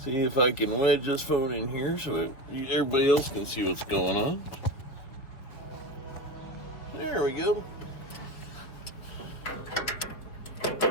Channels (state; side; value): late; right; 4.5 ms